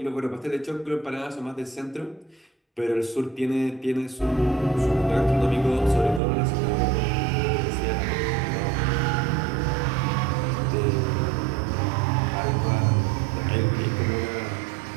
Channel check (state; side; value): drops out; left; at 6.2 s